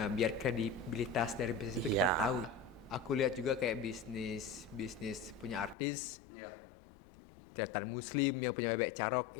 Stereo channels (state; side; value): drops out; right; at 5.8 s